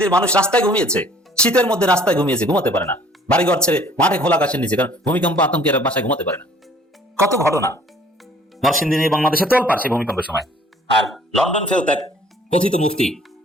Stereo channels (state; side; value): normal; both; correlation 0.56